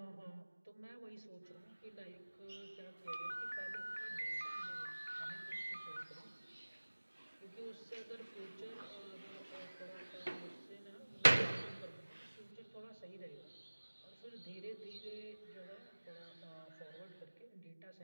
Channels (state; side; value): inverted; both; correlation -1.00